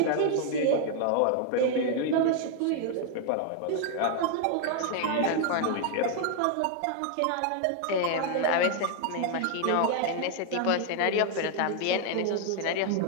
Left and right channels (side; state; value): both; different; correlation 0.00